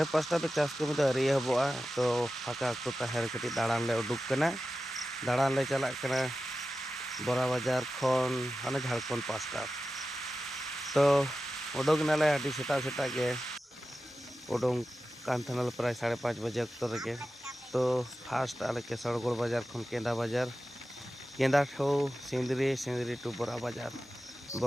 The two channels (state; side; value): normal; both; correlation 0.93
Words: पास्टा पे चास कमी दो अरि हबोआ तो फाका अक्तो ताहेर कटी दाड़ान ले उडुक कना दाड़ान ले चलाक कना बोरा बाजार खन हाने झारखंड पास्टा तो उडुक नाले आदि सेता सेता के उडुंग कांथनल प्राय 5:30 बजे अक्तो रगे तो फास्ट आले के सड़गोड़ बाजार खन केंदा ठो सिंदरी टू बोरा